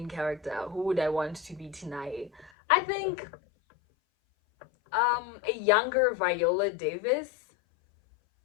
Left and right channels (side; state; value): right; drops out; at 2.5 s